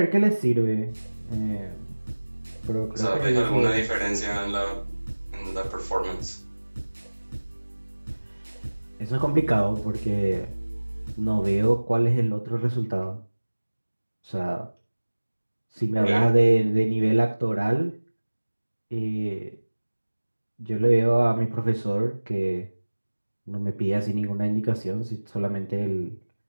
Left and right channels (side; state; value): both; inverted; correlation -1.00